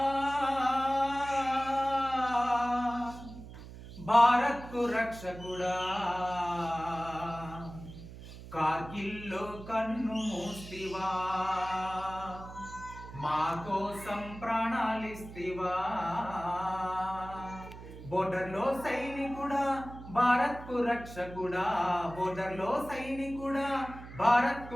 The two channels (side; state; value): right; noise; hum, 14 dB below the sound